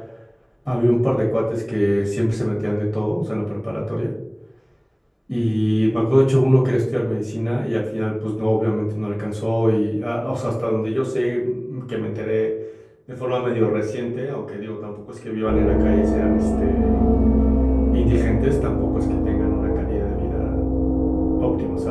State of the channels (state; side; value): identical; both; correlation 1.00